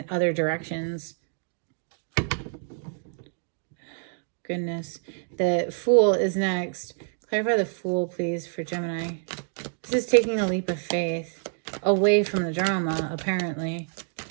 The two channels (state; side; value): silent; left; 60 dB below the other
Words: other directions. Goodness. The Fool is next. Clarify the Fool, please, for Gemini. This is taking a leap of faith away from the drama, apparently.